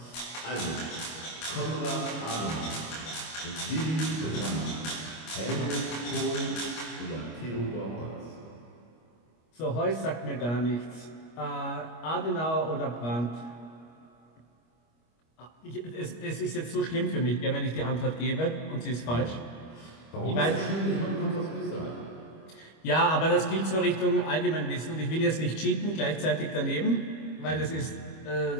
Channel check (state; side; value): late; right; 25 ms